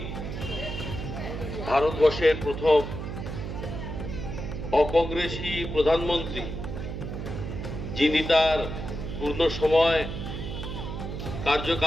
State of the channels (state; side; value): noise; right; hum, 6 dB below the sound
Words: ভারতবর্ষের প্রথম অকংগ্রেসী প্রধানমন্ত্রী, যিনি তার পূর্ণ সময়